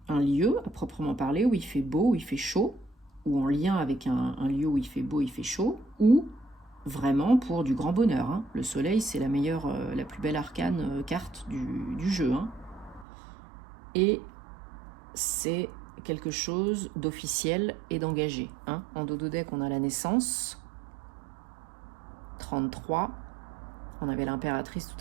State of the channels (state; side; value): drops out; left; at 13.1 s